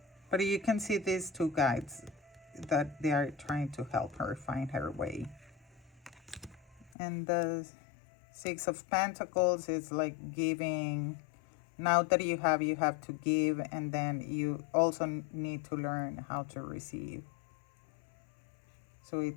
But you can see these two guides that they are trying to help her find her way. And the Six of Pentacles is like giving. Now that you have to give, and then you also need to learn how to receive. So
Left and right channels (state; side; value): drops out; right; at 6.9 s